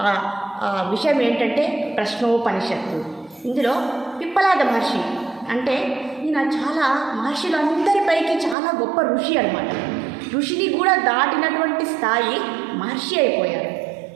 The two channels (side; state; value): left; drops out; at 8.6 s